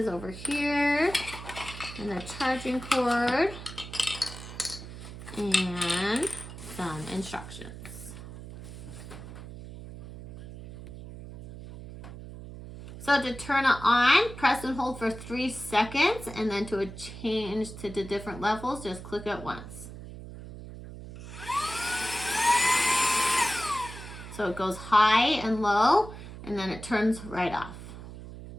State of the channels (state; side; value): noise; right; hum, 13 dB below the sound